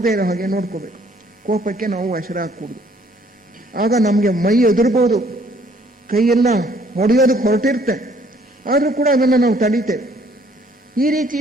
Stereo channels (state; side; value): normal; both; correlation 0.62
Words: ಇರೋ ಹಾಗೆ ನೋಡ್ಕೋಬೇಕು. ಕೋಪಕ್ಕೆ ನಾವು ವಶರಾಗಕೂಡದು. ಆಗ ನಮಗೆ ಮೈ ಎದುರ್ಬೋದು, ಕೈಯೆಲ್ಲ ಹೊಡೆಯೋದಕ್ಕೆ ಹೊರಟಿರುತ್ತೆ, ಆದರೂ ಕೂಡ ಅದನ್ನು ನಾವು ತಡೀತೇವೆ. ಈ ರೀತಿ